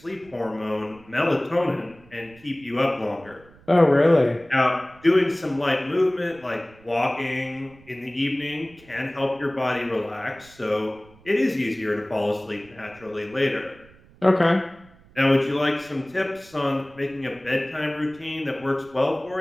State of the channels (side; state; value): right; noise; rumble, 26 dB below the sound